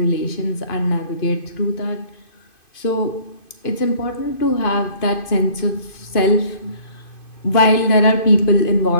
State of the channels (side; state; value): right; late; 2.5 ms